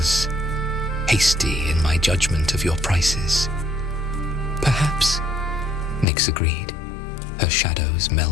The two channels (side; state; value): right; drops out; at 6.1 s